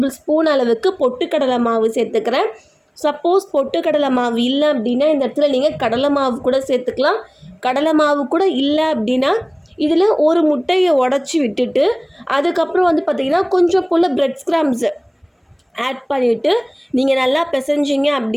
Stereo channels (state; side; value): identical; both; correlation 1.00